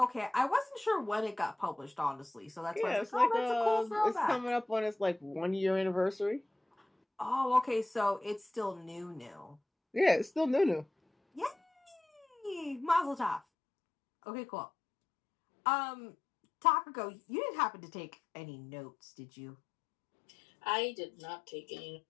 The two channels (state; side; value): drops out; right; at 13.4 s